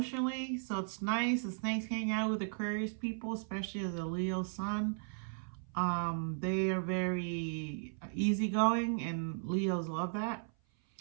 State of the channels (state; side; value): silent; left; 54 dB below the other